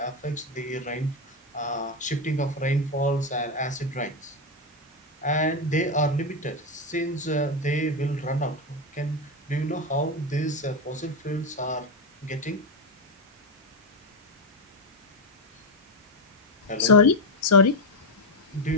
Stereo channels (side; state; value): both; normal; correlation 0.09